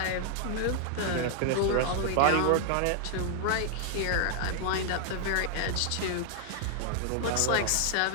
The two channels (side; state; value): both; different; correlation 0.00